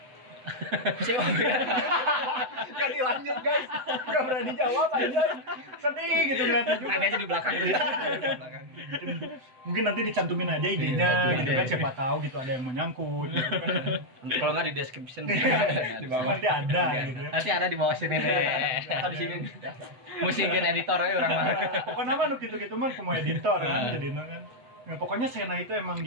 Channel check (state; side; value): late; left; 7.9 ms